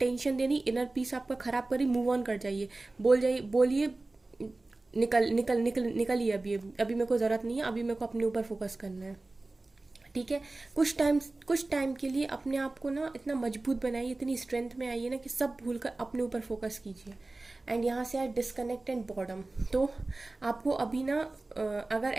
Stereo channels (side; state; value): left; quieter; 3.1 dB